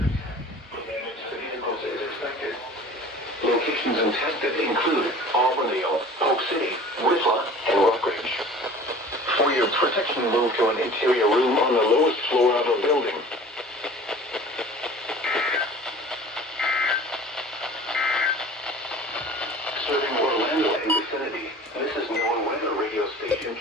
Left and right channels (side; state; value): both; normal; correlation 0.44